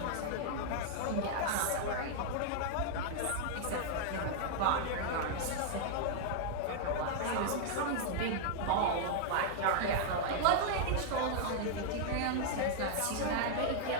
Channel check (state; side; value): different; both; correlation -0.01